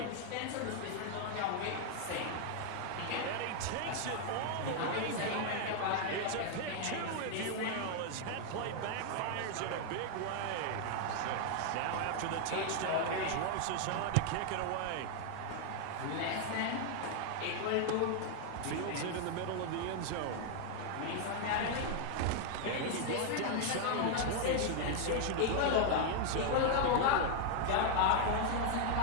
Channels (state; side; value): different; both; correlation 0.00